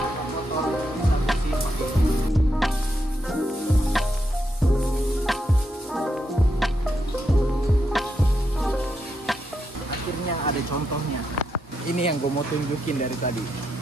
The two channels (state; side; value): normal; both; correlation 0.82